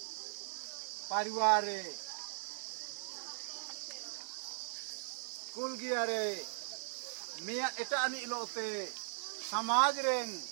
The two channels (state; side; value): silent; left; 52 dB below the other